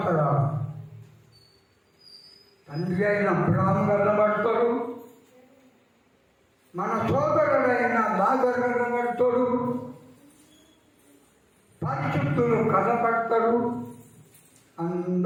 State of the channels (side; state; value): both; identical; correlation 1.00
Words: తండ్రి అయిన అబ్రాము కన్నబడతాడు, మన సోదరుడైన లాజరు కనబడతాడు, పరిశుద్ధులు కనబడతాడు,